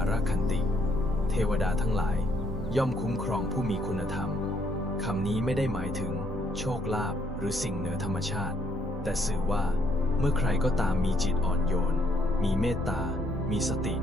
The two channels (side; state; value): both; normal; correlation 0.70